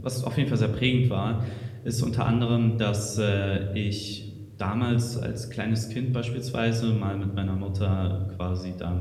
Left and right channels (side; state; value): both; identical; correlation 1.00